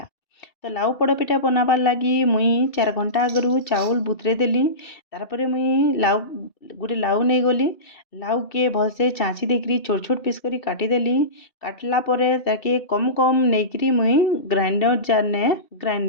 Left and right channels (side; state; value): right; late; 2.6 ms